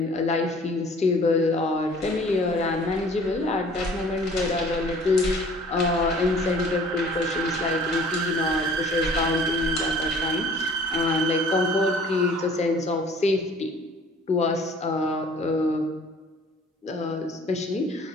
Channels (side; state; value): both; normal; correlation 0.51